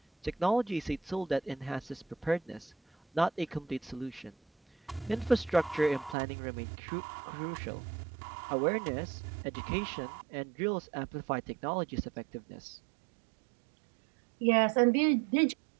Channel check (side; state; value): left; drops out; at 6.2 s